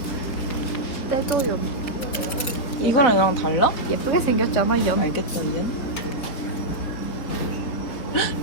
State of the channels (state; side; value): late; right; 4.3 ms